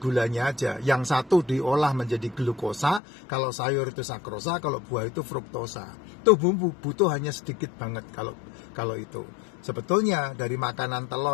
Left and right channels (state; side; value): drops out; right; at 3.0 s